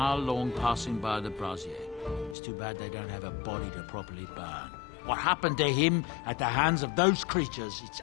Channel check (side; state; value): right; drops out; at 2.4 s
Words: long passing by the brazier. It's too bad they don't have a body to properly burn. What happened to him at the hands of those creatures, it's